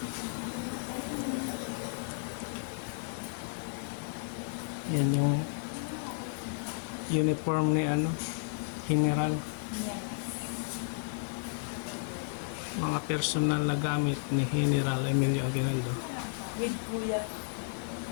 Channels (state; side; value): silent; right; 56 dB below the other